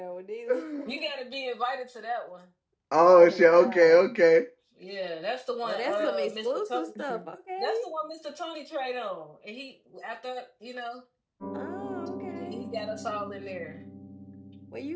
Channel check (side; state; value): both; identical; correlation 1.00